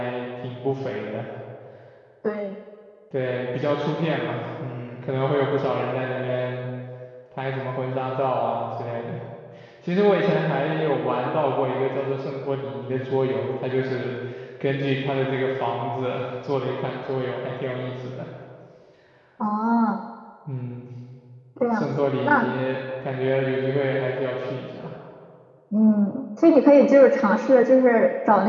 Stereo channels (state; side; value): identical; both; correlation 1.00